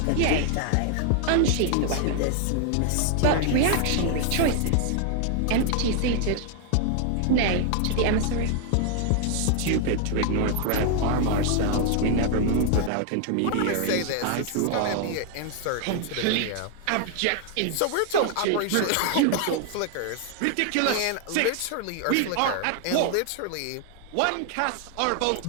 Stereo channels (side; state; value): both; different; correlation 0.00